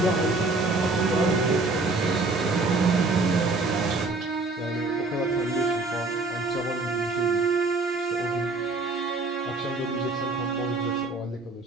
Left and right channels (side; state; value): left; quieter; 3.4 dB